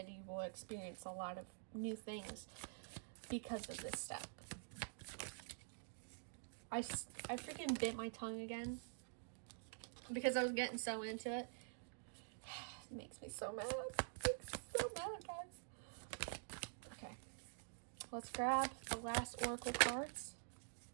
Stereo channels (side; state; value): left; silent; digital silence